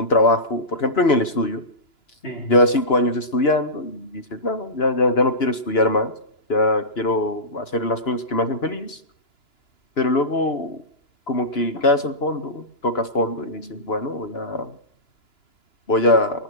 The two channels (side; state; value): right; late; 2.9 ms